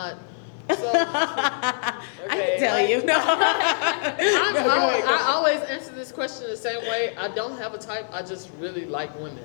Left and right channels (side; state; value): right; silent; 62 dB below the other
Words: can tell you. No. I always answer this question the same way. I don't have a type. I just really like